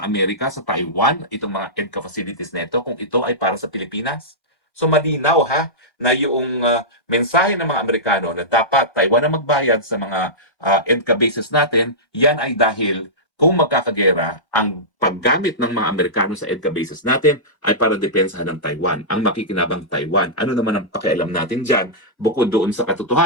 Amerika sa Taiwan itong mga EDCA facilities nito kung ito ay para sa Pilipinas? So malinaw ha na yung mensahe ng mga Amerikano na dapat Taiwan ang magbayad sa mga EDCA bases natin, yan ay dahil kung magkakagera, ang paggamit ng mga Amerikano sa EDCA bases natin ay para depensahan ng Taiwan, ang makikinabang Taiwan. Ano naman ang pakialam natin dyan, bukod doon sa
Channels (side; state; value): right; late; 1.0 ms